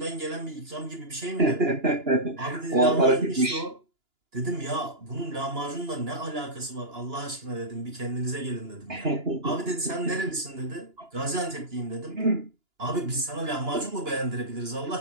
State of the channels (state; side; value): late; left; 2.9 ms